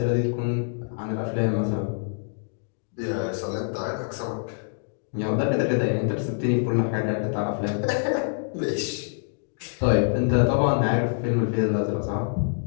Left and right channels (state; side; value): silent; right; digital silence